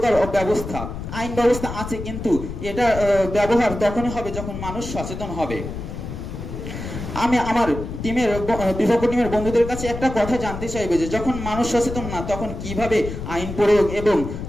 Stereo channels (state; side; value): noise; left; rumble, 8 dB below the sound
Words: ব্যবস্থা। আইন ব্যবস্থা আছে, কিন্তু এটা ব্যবহার তখনই হবে যখন মানুষ সচেতন হবে। আমি আমার বিপক্ষ টিমের বন্ধুদের কাছে একটা কথা জানতে চাইবে যে যখন মানুষ সচেতন না তখন কিভাবে আইন প্রয়োগ এবং